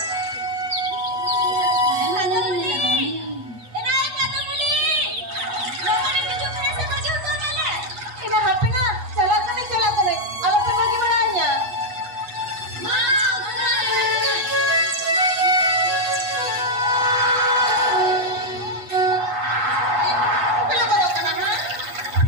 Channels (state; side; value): late; left; 8.3 ms